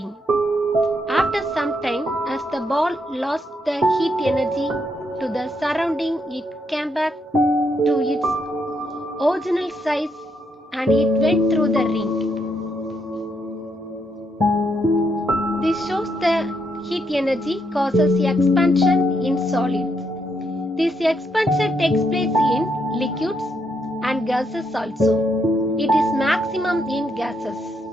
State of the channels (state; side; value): normal; both; correlation 0.77